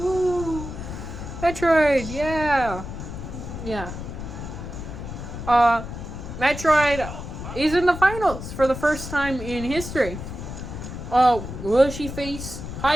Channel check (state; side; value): noise; left; rumble, 9 dB below the sound